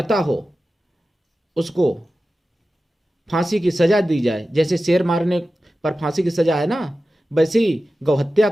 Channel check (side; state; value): both; normal; correlation 0.94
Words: हो उसको फांसी की सजा दी जाए। जैसे शेर मारने पर फांसी की सजा है ना, वैसे ही गौ हत्या